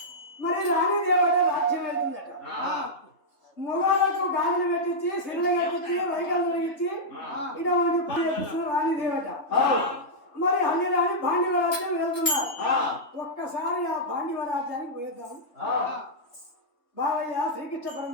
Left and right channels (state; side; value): late; right; 3.3 ms